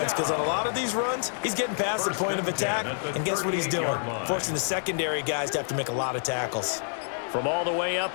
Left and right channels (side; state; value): right; silent; digital silence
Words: because on a lot of these runs, he's getting past the point of attack, and guess what he's doing? Forcing the secondary guys to have to make a lot of tackles. From all the way up